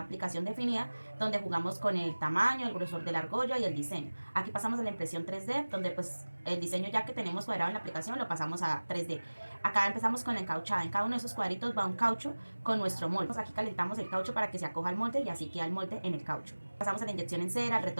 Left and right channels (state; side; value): inverted; both; correlation -1.00